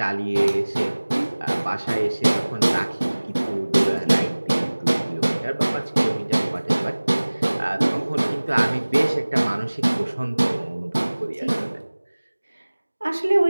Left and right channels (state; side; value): inverted; both; correlation -1.00